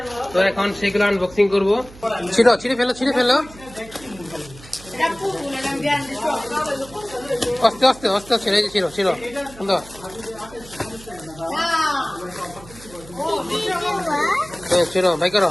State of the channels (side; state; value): right; noise; hum, 20 dB below the sound